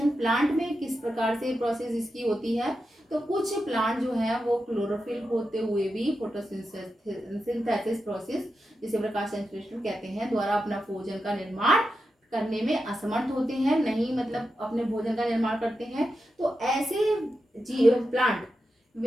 प्लांट में किस प्रकार से प्रोसेस इसकी होती है? तो कुछ प्लांट जो है वो क्लोरोफिल होते हुए भी फोटोसिंथेसिस प्रोसेस, जिसे प्रकाश संश्लेषण कहते हैं, द्वारा अपना भोजन का निर्माण करने में असमर्थ होते हैं, नहीं मतलब अपने भोजन का निर्माण करते हैं। तो ऐसे प्लांट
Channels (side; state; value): both; normal; correlation 0.89